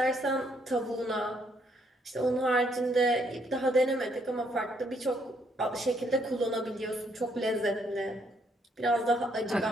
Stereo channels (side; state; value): both; normal; correlation 0.71